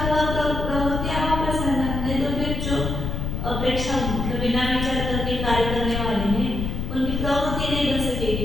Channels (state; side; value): noise; left; rumble, 3 dB below the sound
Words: प्रवृत्ति अभाव प्रसंग है, तो फिर जो अपेक्षा बिना विचार करके कार्य करने वाले हैं उनकी प्रवृत्ति नहीं बन